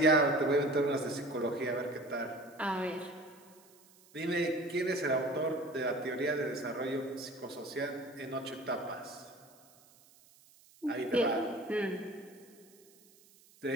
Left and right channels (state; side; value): noise; right; hiss, 27 dB below the sound